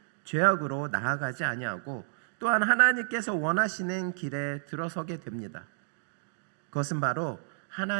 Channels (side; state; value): left; silent; digital silence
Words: 죄악으로 나아가지 아니하고 또한 하나님께서 원하시는 길에 들어서게 됩니다. 그것은 바로